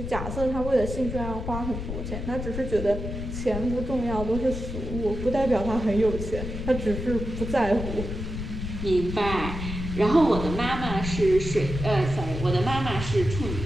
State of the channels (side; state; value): left; noise; rumble, 6 dB below the sound